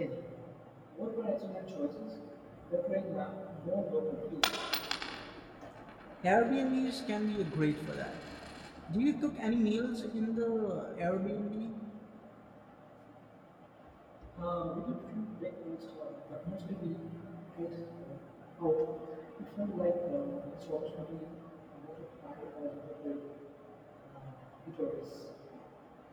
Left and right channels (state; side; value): identical; both; correlation 1.00